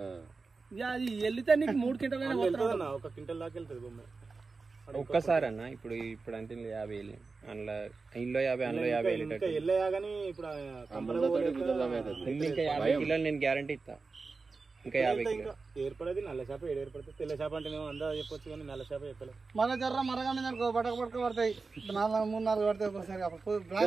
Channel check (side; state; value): left; quieter; 4.2 dB